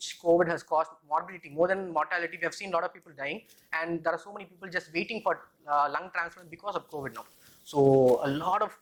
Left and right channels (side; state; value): both; identical; correlation 1.00